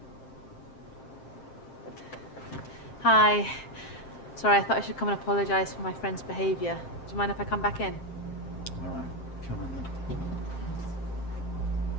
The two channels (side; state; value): right; late; 7.6 ms